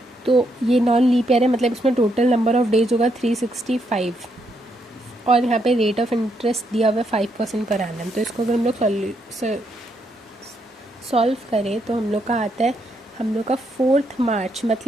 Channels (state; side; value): normal; both; correlation 0.77